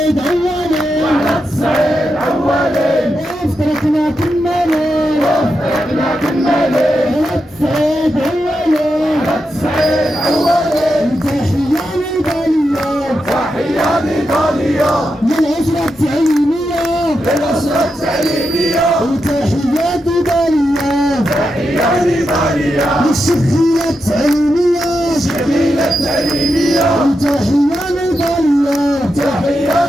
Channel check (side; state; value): both; normal; correlation 0.87